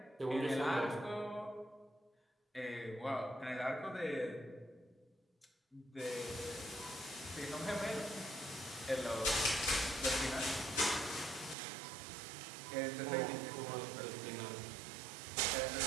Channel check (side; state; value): left; drops out; at 11.6 s